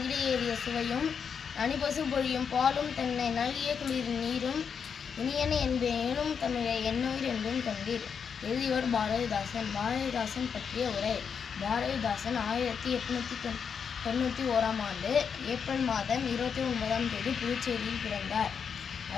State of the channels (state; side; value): quieter; right; 6.7 dB